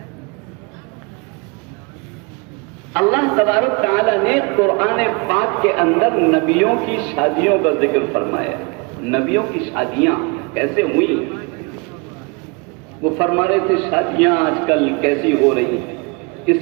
اللہ تبارک تعالیٰ نے قرآن پاک کے اندر نبیوں کی شادیوں کا ذکر فرمایا۔ نبیوں کی شادیاں کیسے ہوئی؟ وہ فرما رہے تھے شادیاں آج کل کیسی ہو رہی ہیں،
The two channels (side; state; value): left; quieter; 30.3 dB